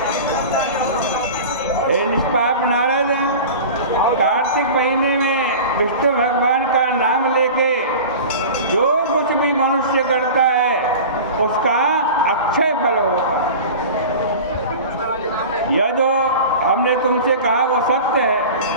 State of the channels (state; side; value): inverted; both; correlation -0.34